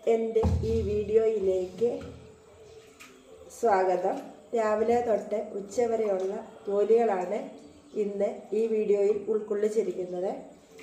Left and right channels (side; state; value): both; identical; correlation 1.00